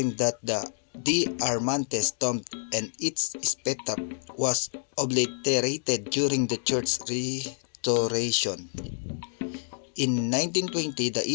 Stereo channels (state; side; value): silent; right; digital silence